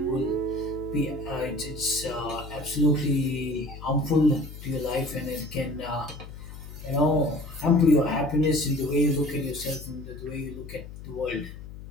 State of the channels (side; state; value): left; noise; hum, 13 dB below the sound